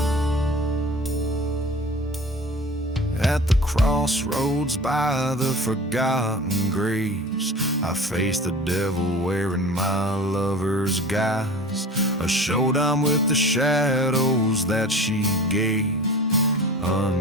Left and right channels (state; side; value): normal; both; correlation 0.38